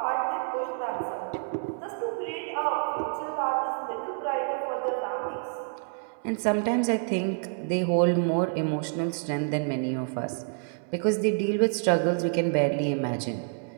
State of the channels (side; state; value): left; silent; digital silence